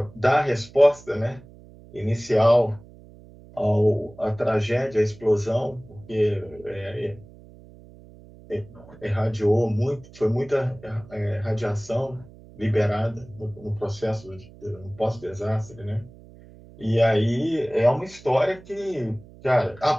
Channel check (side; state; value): right; noise; hum, 21 dB below the sound